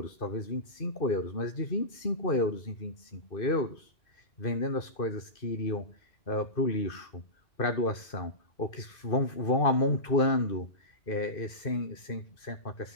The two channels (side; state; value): right; late; 2.5 ms